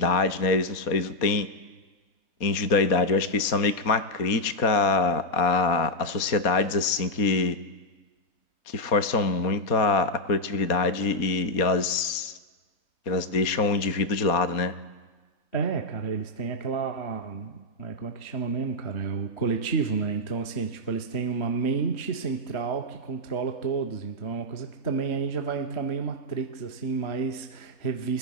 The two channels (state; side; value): late; right; 4.2 ms